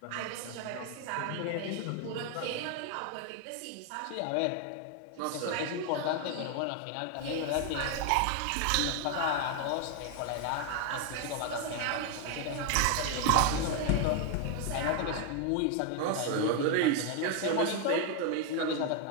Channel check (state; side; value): different; both; correlation 0.01